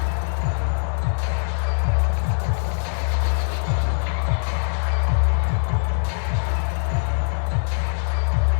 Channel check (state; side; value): silent; right; 64 dB below the other